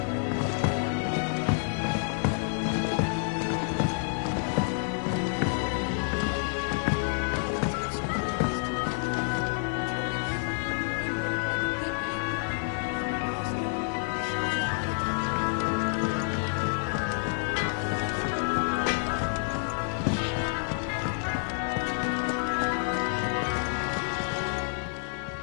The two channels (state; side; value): silent; right; 59 dB below the other